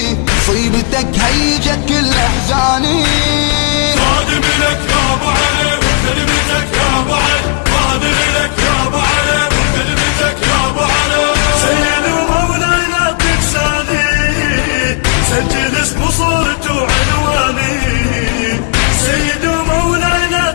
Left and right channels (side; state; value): right; quieter; 38.4 dB